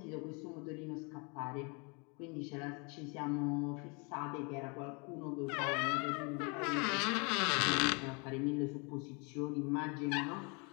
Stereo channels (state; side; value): quieter; right; 32.2 dB